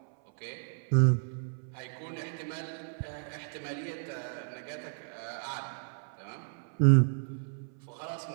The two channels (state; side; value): silent; left; 56 dB below the other